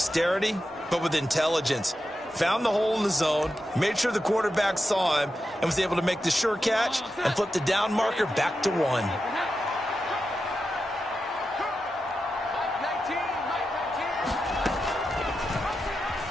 but with intelligence. Found the hole in the zone, made sure the quarterback saw him, and was able to make the sure catch and flip the down marker back to 1.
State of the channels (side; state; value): both; normal; correlation 0.90